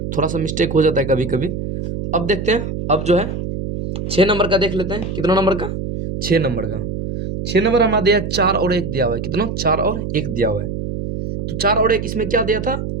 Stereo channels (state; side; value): noise; right; hum, 5 dB below the sound